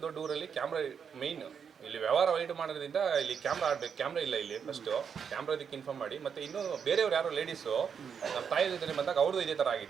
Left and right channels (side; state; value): left; quieter; 7.0 dB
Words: ದೊಡ್ಡ ಊರಲ್ಲಿ ಕ್ಯಾಮ್ರಾ ಮೈನ್, ಇಲ್ಲಿ ವ್ಯವಹಾರ ವೈಟ್ ಮಾಡೋದ್ರಿಂದ ಇಲ್ಲಿ ಕ್ಯಾಮ್ರಾ ಆಡ್ಬೇಕು, ಕ್ಯಾಮ್ರಾ ಇಲ್ಲ ಇಲ್ಲಿ. ಫಸ್ಟ್ ಕ್ಯಾಮ್ರಾ ಇದಕ್ಕೆ ಇನ್ಫಾರ್ಮ್ ಮಾಡಿ. ಮತ್ತೆ ಇನ್ನೂ ಬೇರೆಯವ್ರು ಯಾರೋ ಲೇಡೀಸು ನಮ್ಮ ತಾಯಿ ಜೊತೆ ಬಂದಾಗ ಅವ್ರದ್ದು ಇದೇ ಥರ